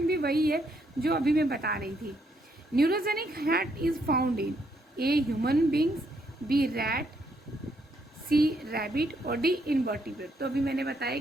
भी वही है जो अभी मैं बता रही थी। Neurogenic heart is found in A human beings, B rat, C rabbit और डी इनवर्टिब्रेट। तो अभी मैंने बताया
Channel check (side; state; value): both; normal; correlation 0.74